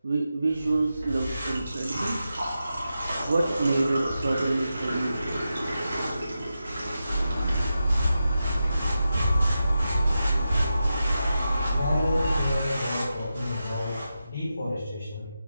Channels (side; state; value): both; inverted; correlation -0.90